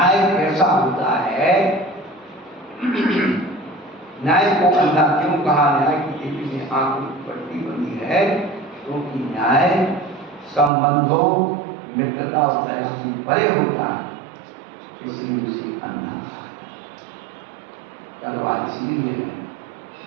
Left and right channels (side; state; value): left; drops out; at 10.7 s